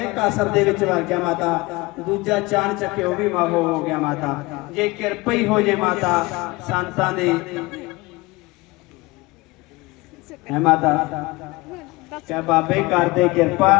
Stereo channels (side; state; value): right; quieter; 22.9 dB